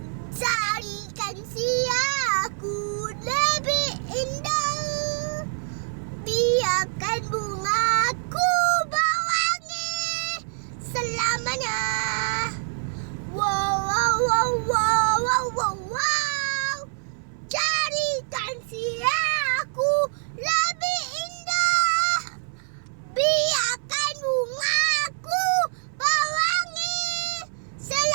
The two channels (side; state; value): left; silent; 61 dB below the other